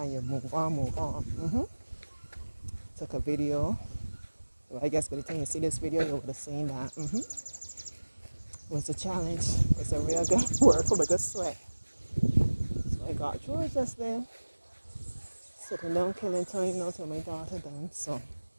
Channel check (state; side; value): inverted; both; correlation -1.00